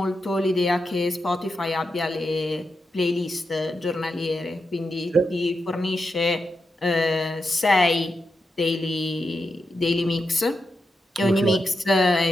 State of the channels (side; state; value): both; normal; correlation 0.87